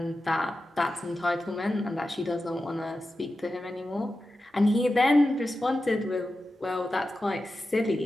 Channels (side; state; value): both; normal; correlation 0.92